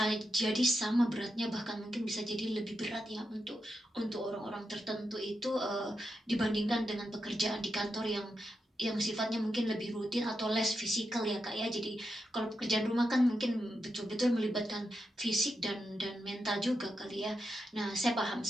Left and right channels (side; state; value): both; normal; correlation 0.87